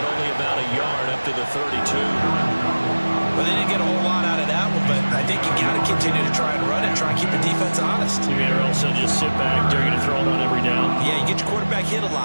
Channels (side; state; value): both; inverted; correlation -1.00